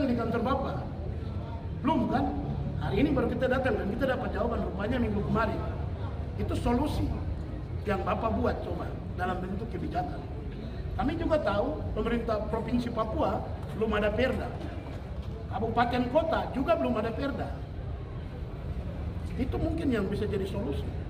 di kantor Bapak, belum kan? Hari ini baru kita datang dan kita dapat jawaban rupanya minggu kemarin. Itu solusi yang Bapak buat coba dalam bentuk kebijakan. Kami juga tahu pemerintah Provinsi Papua belum ada perda. Kabupaten kota juga belum ada perda. Itu mungkin yang bisa jadi solusi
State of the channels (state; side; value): identical; both; correlation 1.00